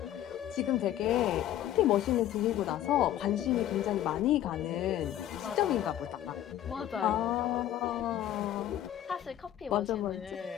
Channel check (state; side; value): quieter; right; 12.2 dB